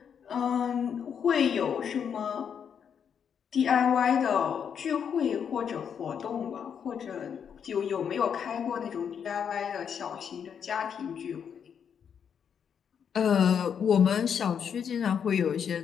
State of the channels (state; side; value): quieter; right; 7.6 dB